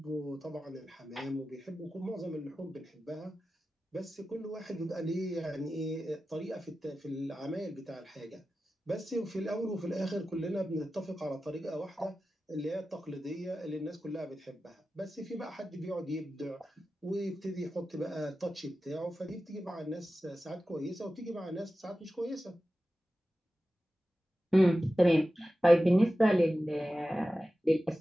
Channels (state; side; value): normal; both; correlation 0.94